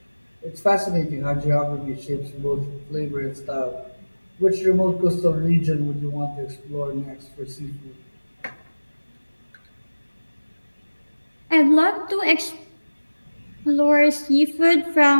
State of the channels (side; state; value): both; inverted; correlation -1.00